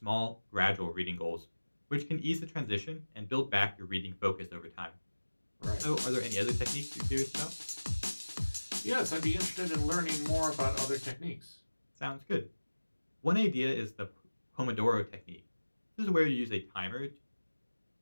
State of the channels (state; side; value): inverted; both; correlation -1.00